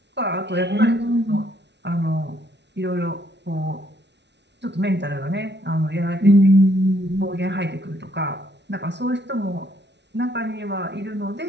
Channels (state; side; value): late; left; 0.50 ms